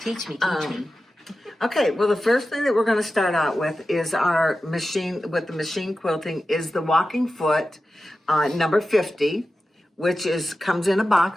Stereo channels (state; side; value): normal; both; correlation 0.93